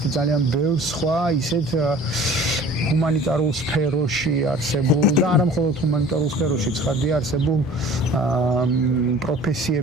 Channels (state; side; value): normal; both; correlation 0.46